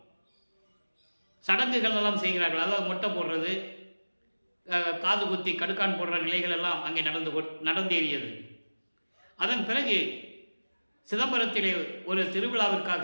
சடங்குகள் எல்லாம் செய்கிறார்கள். அதாவது மொட்டை போடுறது, காது குத்தி கடுக்கான் போடுற நிலைகள் எல்லாம் அங்கே நடந்தேறியது. அதன் பிறகு சிதம்பரத்திலே ஒரு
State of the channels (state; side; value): inverted; both; correlation -1.00